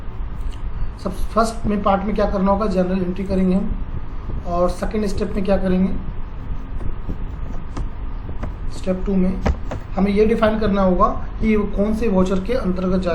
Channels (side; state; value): both; identical; correlation 1.00